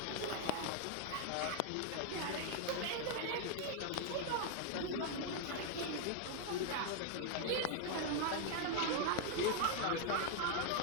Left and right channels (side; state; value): both; different; correlation 0.00